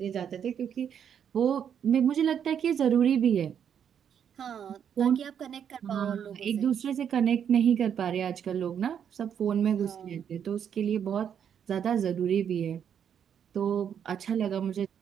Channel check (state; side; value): quieter; left; 8.4 dB